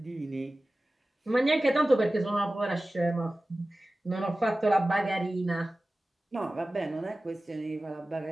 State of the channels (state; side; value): normal; both; correlation 0.96